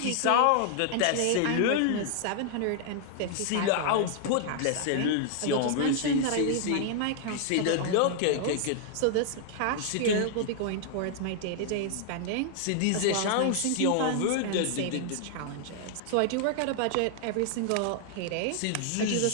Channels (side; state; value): both; different; correlation 0.00